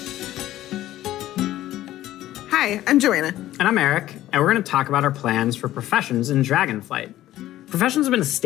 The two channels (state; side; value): quieter; right; 14.2 dB